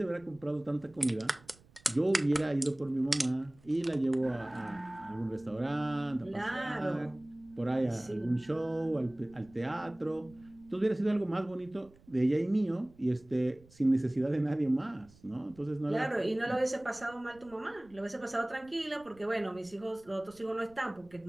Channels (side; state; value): right; noise; rumble, 26 dB below the sound